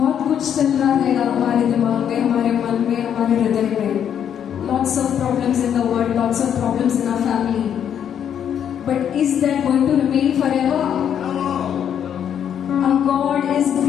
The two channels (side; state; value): right; quieter; 9.0 dB